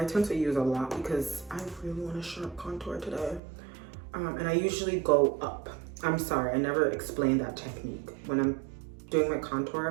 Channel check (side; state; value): left; drops out; at 3.4 s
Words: tend to use a lot because I really want a sharp contour today. And I usually go up. I'm sorry, I never explained that technique. When I'm doing my